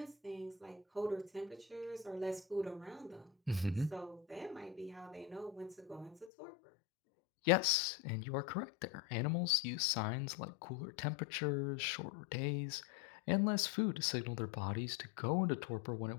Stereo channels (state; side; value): drops out; right; at 6.3 s